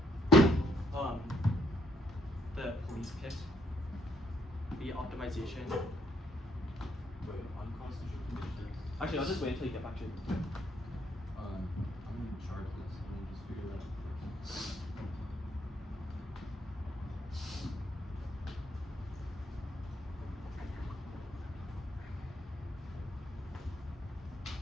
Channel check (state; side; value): normal; both; correlation 0.70